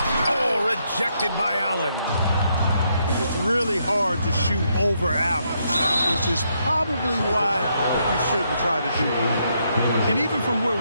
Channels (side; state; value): both; inverted; correlation -0.77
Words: Oh, rejected by Allen. It's really hard to shoot over Allen, which is probably why you shouldn't try to do it. And even from where